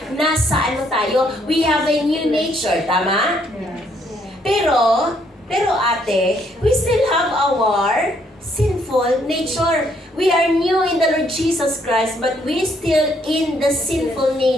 nasa ano tayo? We have a new nature, tama? Pero ate, we still have our sinful nature. We are new in the Lord Jesus Christ, but we still in the sinful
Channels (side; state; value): both; normal; correlation 0.70